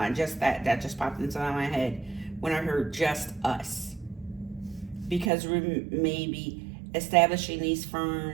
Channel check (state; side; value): drops out; left; at 5.3 s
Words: Just that just popped into my head when I heard just us. Because maybe establishing these